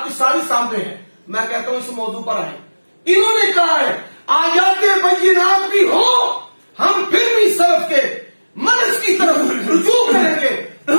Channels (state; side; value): inverted; both; correlation -1.00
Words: کی ساری سامنے ہے۔ میں کہتا ہوں اس موضوع پر آئیں، انہوں نے کہا ہے آیات بینات بھی ہو ہم پھر بھی سلف کے منہج کی طرف رجوع کریں گے،